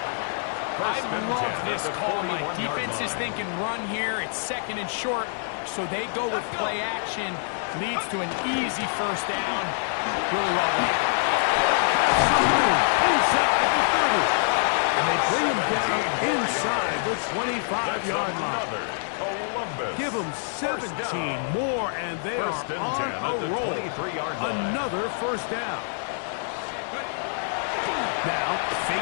I love this call, Mike. Defense is thinking run here. It's second and short, so they go with play action. Leads to an easy first down. Really well done. Has some room inside the 30. And they bring him down inside the 25-yard line. Give them 17 more, and they are on a roll. Another first down. Now,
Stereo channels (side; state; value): right; silent; digital silence